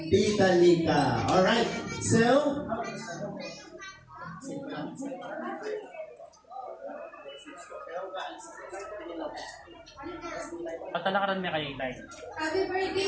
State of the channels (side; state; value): both; identical; correlation 1.00